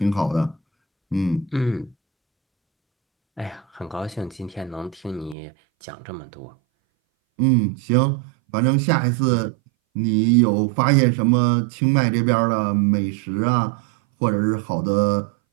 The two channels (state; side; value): drops out; left; at 5.4 s